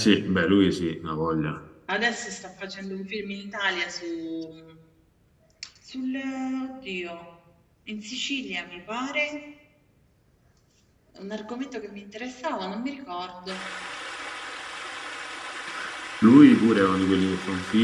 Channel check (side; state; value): both; identical; correlation 1.00